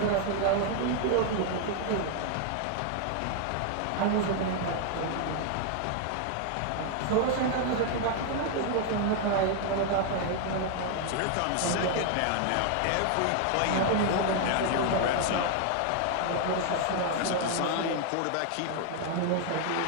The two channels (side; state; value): both; different; correlation 0.00